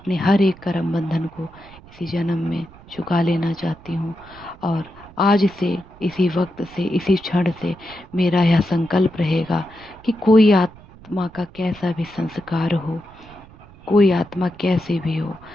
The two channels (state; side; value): noise; right; rumble, 22 dB below the sound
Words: हर एक कर्म बंधन को इसी जन्म में चुका लेना चाहती हूँ। और आज से, इसी वक्त से, इसी क्षण से मेरा यह संकल्प रहेगा कि कोई आत्मा का कैसा भी संस्कार हो, कोई आत्मा कैसे भी हो,